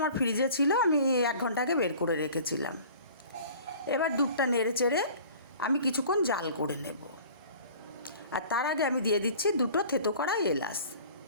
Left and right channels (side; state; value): both; inverted; correlation -0.46